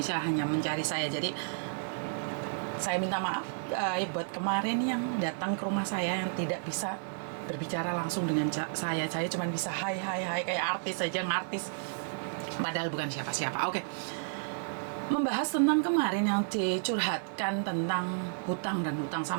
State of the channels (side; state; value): left; silent; digital silence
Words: hanya mencari saya. Jadi saya minta maaf buat kemarin yang datang ke rumah saya yang tidak bisa berbicara langsung dengan saya. Saya cuma bisa hai kayak artis saja, ngartis, padahal bukan siapa-siapa. Oke. Membahas tentang kemarin yang dicurhatkan tentang hutang dan hutang,